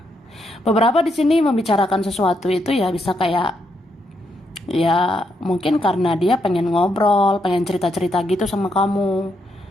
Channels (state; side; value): normal; both; correlation 0.79